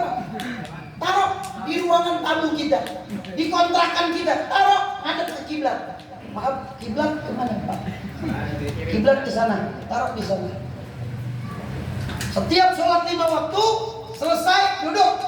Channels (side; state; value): both; identical; correlation 1.00